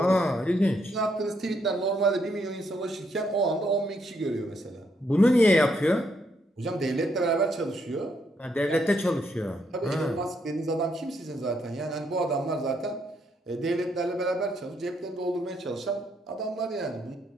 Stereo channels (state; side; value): normal; both; correlation 0.75